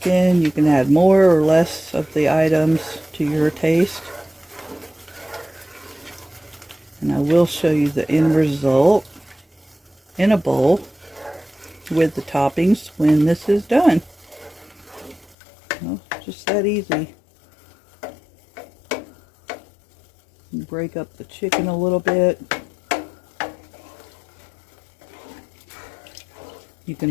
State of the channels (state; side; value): drops out; right; at 15.4 s